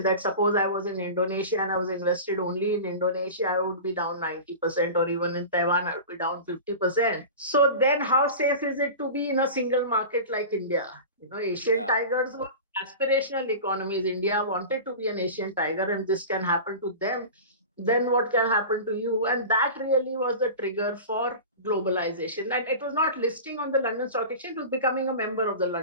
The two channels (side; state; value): both; inverted; correlation -0.32